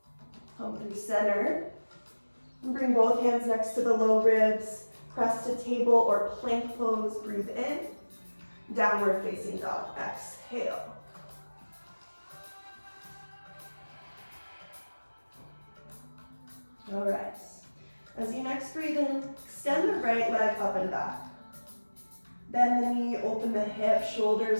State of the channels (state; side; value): inverted; both; correlation -1.00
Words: Come through center. And bring both hands next to the low ribs. Press to table or plank pose, breathe in. Downward facing dog, exhale. All right. As you next breathe in, extend the right leg up and back. Bend the knee, open the hip,